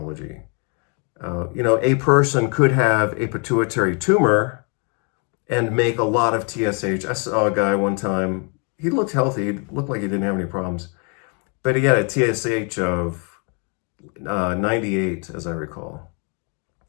A person could have a pituitary tumor and make a lot of TSH. I saw a guy one time, he looked healthy, he looked like he didn't have any problems, but he had a TSH of 98, as I recall.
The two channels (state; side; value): quieter; right; 37.2 dB